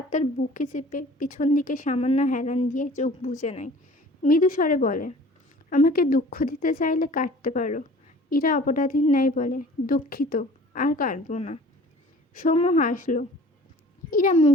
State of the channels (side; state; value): both; normal; correlation 0.47